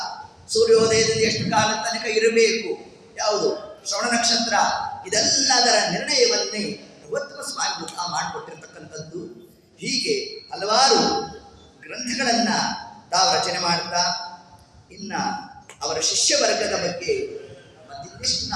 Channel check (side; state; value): both; identical; correlation 1.00